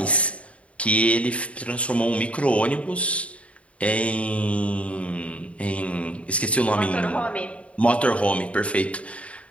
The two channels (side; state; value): right; late; 0.064 ms